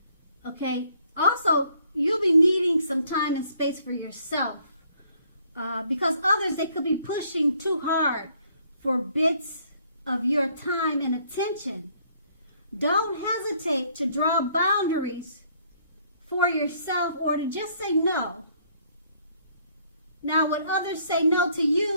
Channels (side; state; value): both; inverted; correlation -0.65